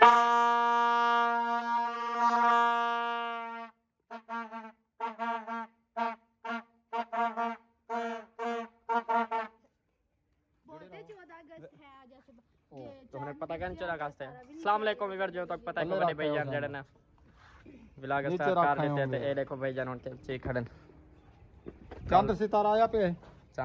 तो हमें पता क्या नहीं चला कास्ते अस्सलाम वालेकुम इवर जो तक पता है को बड़े भाईजान जड़े ना व्लॉग स्टार्ट कर देते थे। ये देखो भाईजान उनके चे खड़न चांद सितारा आया पे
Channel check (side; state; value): both; identical; correlation 1.00